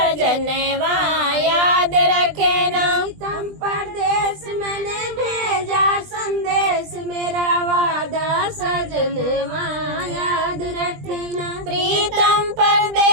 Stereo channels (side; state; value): left; late; 20 ms